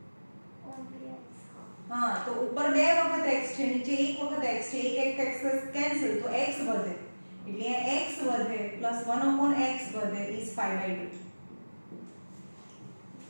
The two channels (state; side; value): inverted; both; correlation -1.00